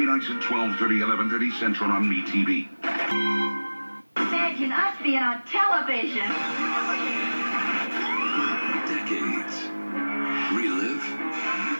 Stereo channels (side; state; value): both; inverted; correlation -1.00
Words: nights at 12:30, 11:30 Central on MeTV. Imagine us being on television. Decades. Relive,